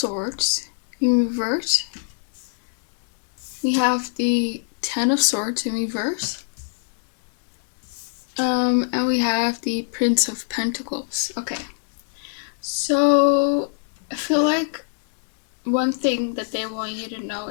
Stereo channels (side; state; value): right; silent; digital silence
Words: in reverse. We have the 10 of Swords in reverse. And we have the Prince of Pentacles. Okay, so I feel like one thing that they want you to know